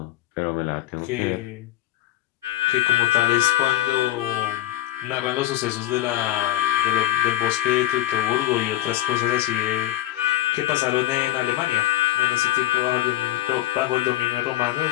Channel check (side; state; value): right; quieter; 14.4 dB